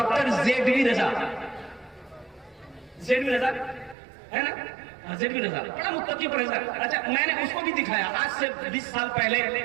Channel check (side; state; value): left; drops out; at 4.0 s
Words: जेडवी रजा, जेडवी रजा है ना, जेडवी रजा, बड़ा मुत्तकी परहेजगार। अच्छा, मैंने उसको भी दिखाया, आज से 20 साल पहले